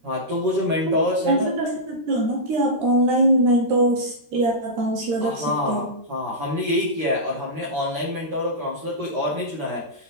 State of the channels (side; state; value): left; late; 13 ms